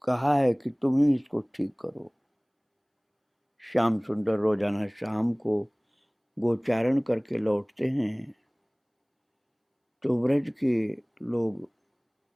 कहा है कि तुम ही इसको ठीक करो। श्याम सुंदर रोजाना शाम को गोचारण करके लौटते हैं, तो ब्रज के लोग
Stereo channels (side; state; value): both; identical; correlation 1.00